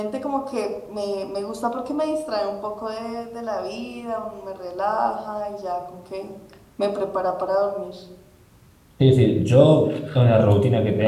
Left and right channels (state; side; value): identical; both; correlation 1.00